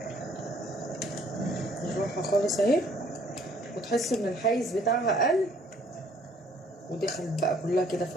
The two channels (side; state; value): both; normal; correlation 0.61